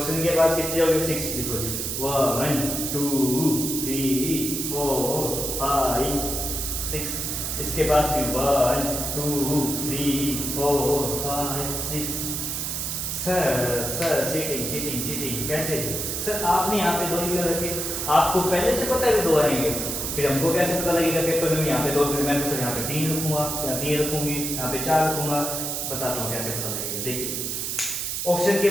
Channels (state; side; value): noise; right; hiss, 2 dB below the sound